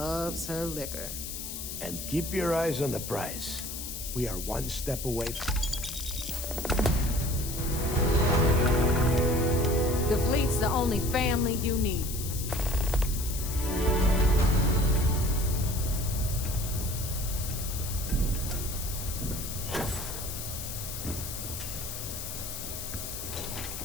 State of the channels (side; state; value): left; noise; hiss, 7 dB below the sound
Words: her liquor. And keep your eyes on the prize. We are one step away. The fleet's the only family you need.